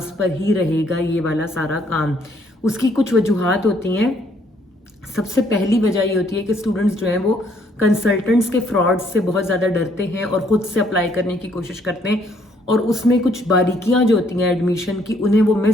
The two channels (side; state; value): both; normal; correlation 0.67